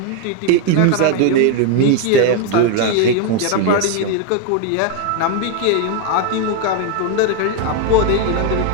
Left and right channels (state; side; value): different; both; correlation 0.01